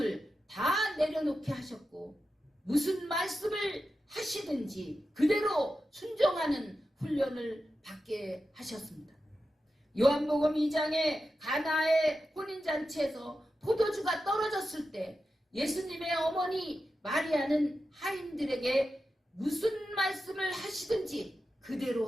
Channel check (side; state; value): both; normal; correlation 0.91